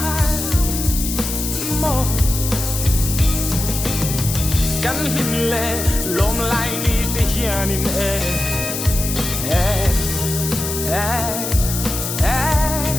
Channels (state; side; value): noise; left; hiss, 4 dB below the sound